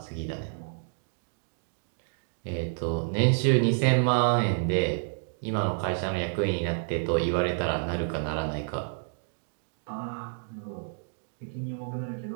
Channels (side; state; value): left; silent; digital silence